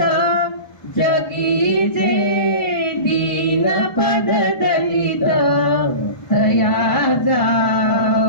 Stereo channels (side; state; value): right; late; 1.2 ms